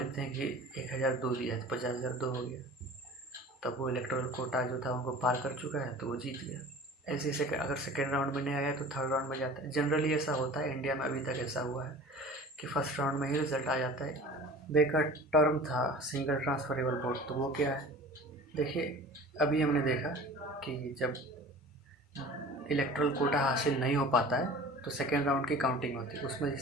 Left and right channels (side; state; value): both; normal; correlation 0.41